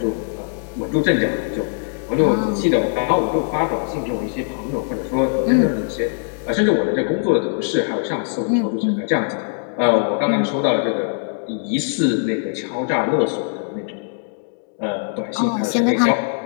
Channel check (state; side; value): silent; right; digital silence